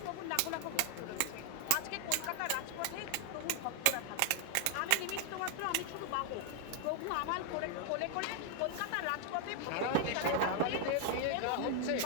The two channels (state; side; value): different; both; correlation 0.00